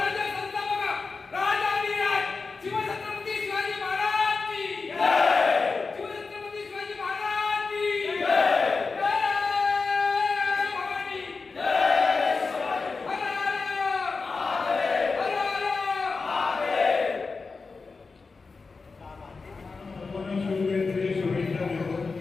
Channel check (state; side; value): quieter; right; 4.4 dB